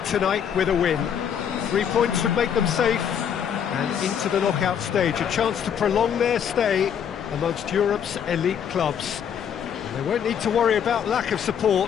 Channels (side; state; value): right; quieter; 8.3 dB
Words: tonight with a win. 3 points would make them safe, and into the knockout stage, a chance to prolong their stay amongst Europe's elite clubs. They won't need to worry about lack of